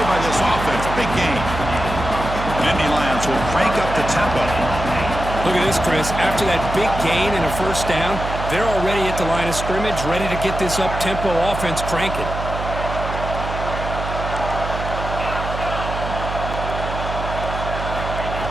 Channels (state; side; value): noise; right; hum, 6 dB below the sound